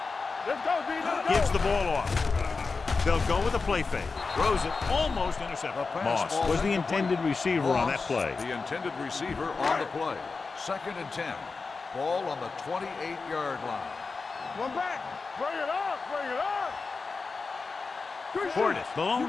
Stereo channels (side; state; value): right; quieter; 4.3 dB